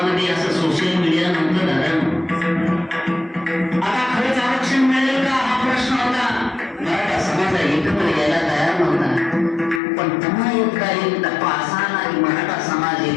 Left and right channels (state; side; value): drops out; right; at 9.8 s